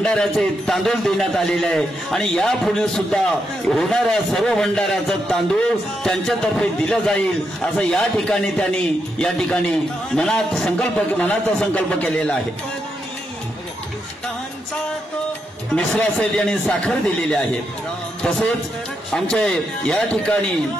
तांदूळ देण्यात आलेले आहे. आणि यापुढे सुद्धा होणाऱ्या सर्व भंडाऱ्याचं तांदूळ त्यांच्यातर्फे दिलं जाईल असं या ठिकाणी त्यांनी या ठिकाणी मनाचा संकल्प केलेला आहे. मिश्रा सेठ यांनी साखर दिलेली आहे. तसेच आमचे या ठिकाणी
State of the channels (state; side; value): normal; both; correlation 0.82